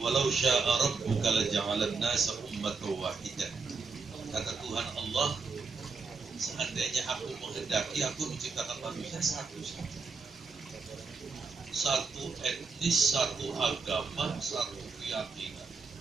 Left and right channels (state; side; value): quieter; left; 4.6 dB